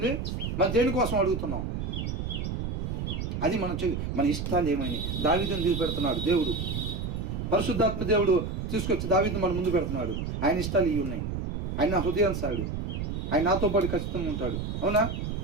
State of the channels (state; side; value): noise; right; rumble, 3 dB below the sound